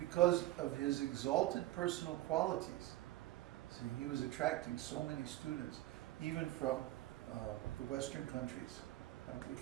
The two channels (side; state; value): left; quieter; 16.3 dB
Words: of his exalted personal qualities, see, he was attracting so many students, even from the Western countries. We